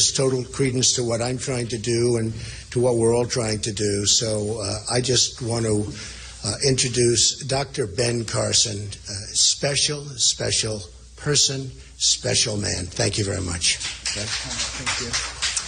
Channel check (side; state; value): both; identical; correlation 1.00